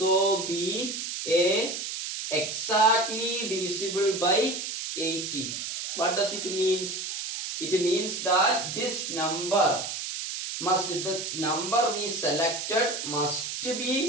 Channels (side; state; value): right; noise; hiss, 5 dB below the sound